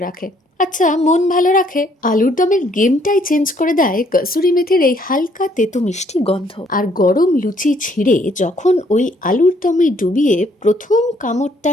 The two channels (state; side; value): normal; both; correlation 0.66